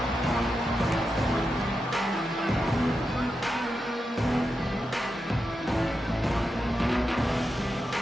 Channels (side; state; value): both; normal; correlation 0.88